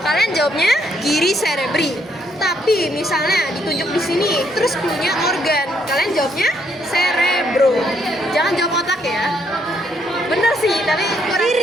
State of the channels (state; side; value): normal; both; correlation 0.72